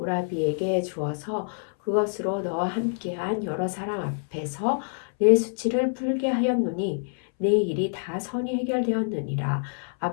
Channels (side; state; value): right; silent; 61 dB below the other